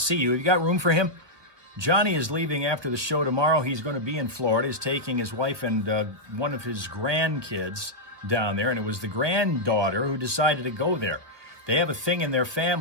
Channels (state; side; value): late; left; 1.2 ms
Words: you. Have you got room for him? Johnny is leaving after the show tomorrow. He's going to be in Florida. He's taking his wife and one of his grandkids down there. And it was the granddaughter who decided to go there. They have a thing in their